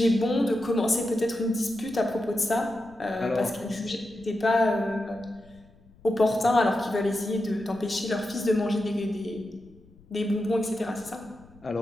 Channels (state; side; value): noise; left; rumble, 26 dB below the sound